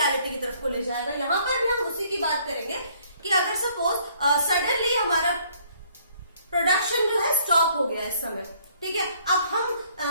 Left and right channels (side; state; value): both; inverted; correlation -0.62